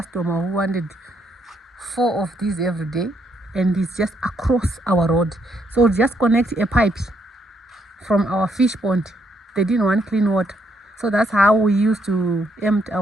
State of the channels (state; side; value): normal; both; correlation 0.74